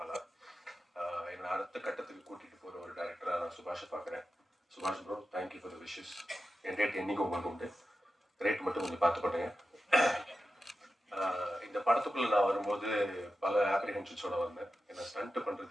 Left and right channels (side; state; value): both; normal; correlation 0.92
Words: ஆனால் என்னை அடுத்த கட்டத்துக்கு கூட்டிட்டு போற ஒரு டைரக்டரா நான் சுபாஷை பார்க்குறேன். சுபாஷ் bro, thank you for the wishes. N rate என்னைக்கும் உங்களுக்கு உண்டு. ரேட் மட்டும் கொஞ்சம் பார்த்து பண்ணுங்க. இந்த படத்துக்குள்ள நான் வரும்போது பல ஆப்ரிஹென்ஷன்ஸோட வந்தேன். ஏன்னா ஸ்டண்ட்